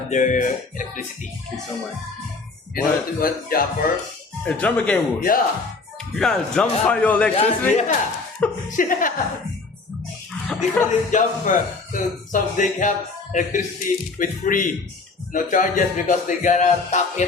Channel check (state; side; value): quieter; right; 4.0 dB